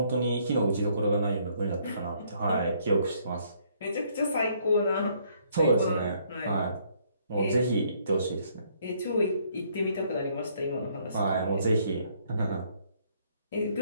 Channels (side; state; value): both; inverted; correlation -0.67